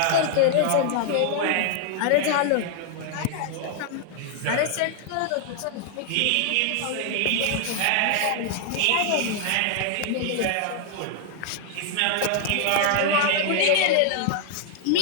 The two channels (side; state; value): both; different; correlation -0.01